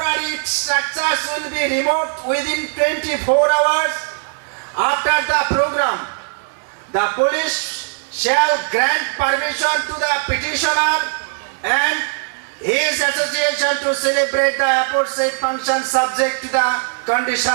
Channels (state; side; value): silent; left; digital silence